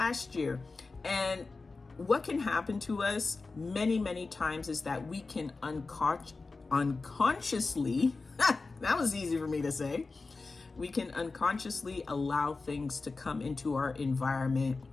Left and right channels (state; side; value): quieter; right; 3.9 dB